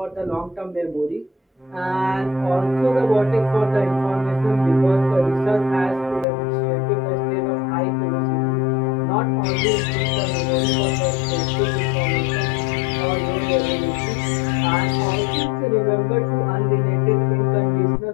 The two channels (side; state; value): right; drops out; at 6.2 s